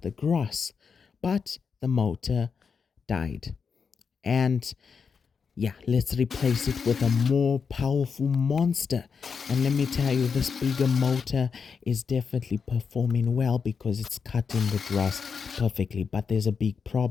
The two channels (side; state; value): right; quieter; 5.9 dB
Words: the grass, but the motor died. And yeah, let's replace it with a more powerful monster. And let me tell you, this bigger motor is definitely performing well because it's cutting the grass perfectly. But there's a big